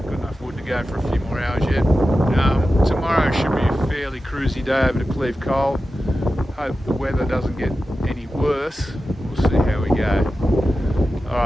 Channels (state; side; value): normal; both; correlation 0.93